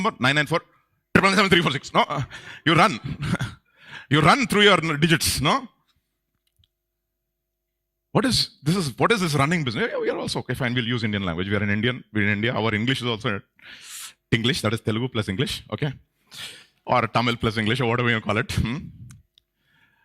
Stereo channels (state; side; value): identical; both; correlation 1.00